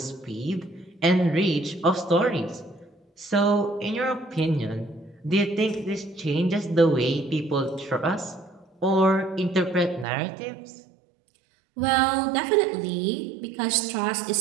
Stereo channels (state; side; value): drops out; left; at 10.1 s